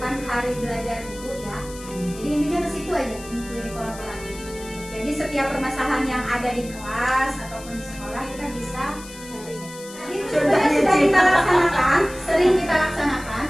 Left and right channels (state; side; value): noise; left; hiss, 16 dB below the sound